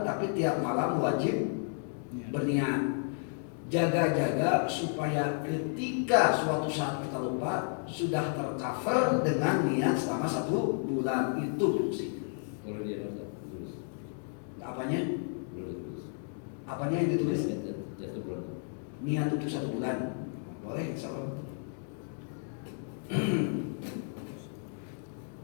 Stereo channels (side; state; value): right; silent; 56 dB below the other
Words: tapi tiap malam wajib berniat. Jaga-jaga supaya ketika suatu saat kita lupa, sudah tercover dengan niat selama 1 bulan. Itu fungsinya. Kalau dia tulis. Apanya? Tulis. Apanya yang ditulis? Jatuh bulan. Niat untuk 1 bulan. Boleh, insyaallah.